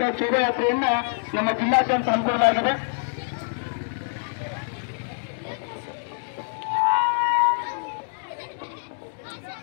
ಶೋಭಾಯಾತ್ರೆಯನ್ನ ನಮ್ಮ ಜಿಲ್ಲಾದ್ಯಂತ ಹಮ್ಮಿಕೊಳ್ಳಲಾಗಿದೆ.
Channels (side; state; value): right; silent; digital silence